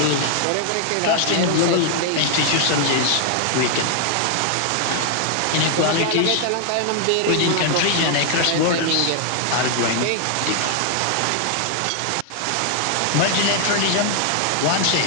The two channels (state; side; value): different; both; correlation 0.00